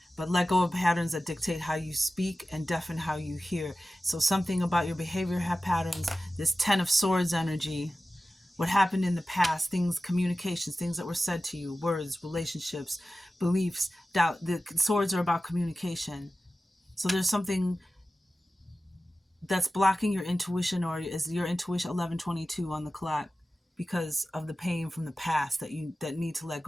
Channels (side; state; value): both; normal; correlation 0.95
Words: But let go of patterns that dictate how you speak and deafen how you hear. So something about your behavior patterns, this 10 of Swords energy, what happened in the past, things, communications, things that were said to you, words, relationships, beliefs, doubt. The swords are about communication. So there's something that's blocking your intuition, or is your intuition 1122 on the clock, because of the pain from the past that need to let